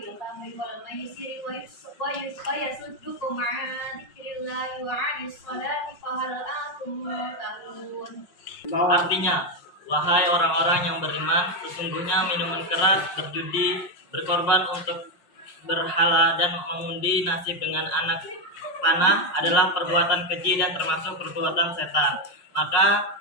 khamri wal maisiri wa yasuddukum 'an dzikrillahi wa 'anis salati fahal antum muntahun. Artinya, wahai orang-orang yang beriman, sesungguhnya minuman keras, berjudi, berkorban untuk berhala, dan mengundi nasib dengan anak panah adalah perbuatan keji dan termasuk perbuatan setan. Maka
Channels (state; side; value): late; right; 5.5 ms